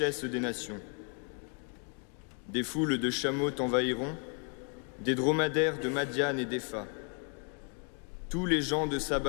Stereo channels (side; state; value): right; quieter; 39.3 dB